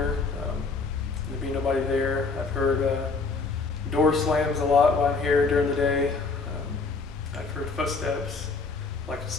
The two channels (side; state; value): right; quieter; 4.2 dB